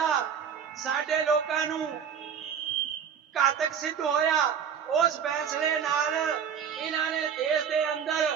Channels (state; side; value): quieter; left; 7.7 dB